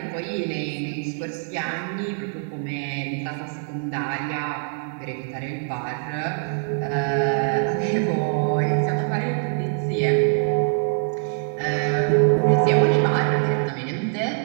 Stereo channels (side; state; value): left; silent; 63 dB below the other